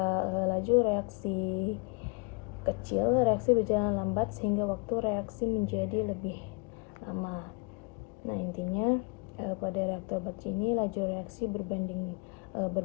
laju reaksi kecil, reaksi berjalan lambat sehingga waktu reaksi menjadi lebih lama. Nah, intinya pada reaktor batch ini laju reaksi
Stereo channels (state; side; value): quieter; right; 32.7 dB